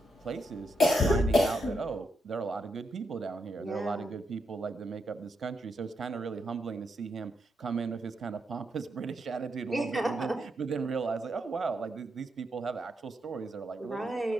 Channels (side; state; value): both; normal; correlation 0.82